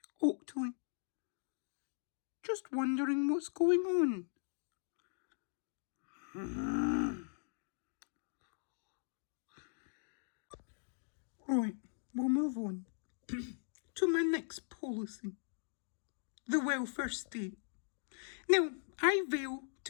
Oakley. Just wondering what's going on. Right, we'll move on to my next policy. The welfare state. Now, I vow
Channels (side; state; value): right; silent; digital silence